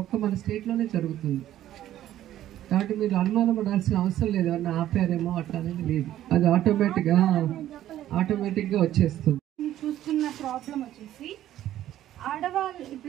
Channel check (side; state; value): left; quieter; 12.7 dB